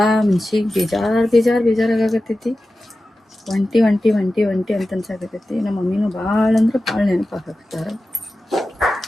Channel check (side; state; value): both; normal; correlation 0.94